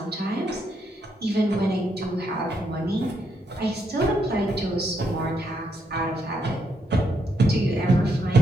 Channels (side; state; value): both; normal; correlation 0.77